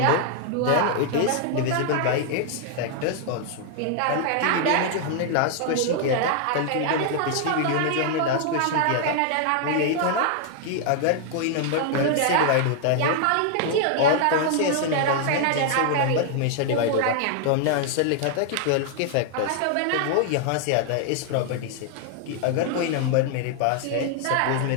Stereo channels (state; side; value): different; both; correlation 0.00